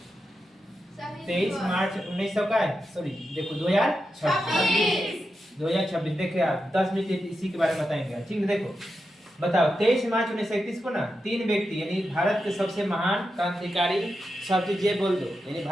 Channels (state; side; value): normal; both; correlation 0.88